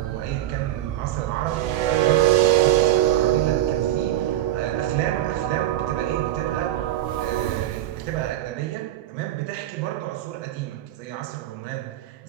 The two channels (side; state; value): left; quieter; 13.1 dB